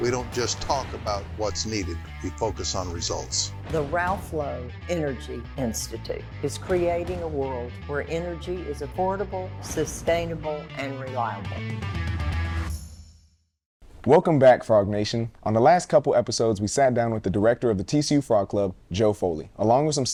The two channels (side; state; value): both; identical; correlation 1.00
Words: We don't just talk about what's needed, we focus on results. The Ralph Lowe Energy Institute is creating a world where energy is affordable, sustainable, and reliable. Welcome back, Frog Nation. On the last couple episodes, we sat down with the director of the TCU Frog Club, Joe Foley, along with some